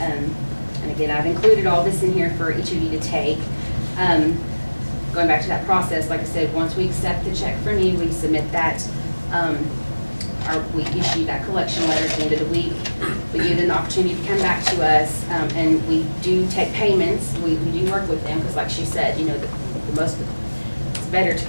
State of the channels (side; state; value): both; inverted; correlation -1.00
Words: again, I've included all this in here for each of you to take. Going back to that process, like I said, once we accept the check from you, we submit that, we issue that collection letter at the end of the week. We give them the opportunity to come back to us, and we do take payments. We do work with them, because like she said, you know, it's better to